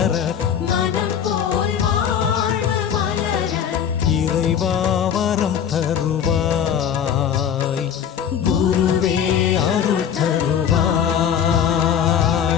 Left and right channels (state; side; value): quieter; right; 8.5 dB